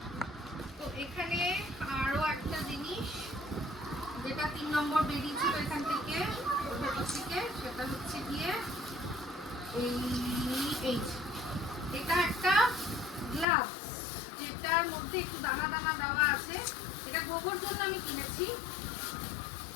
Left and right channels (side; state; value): right; drops out; at 13.5 s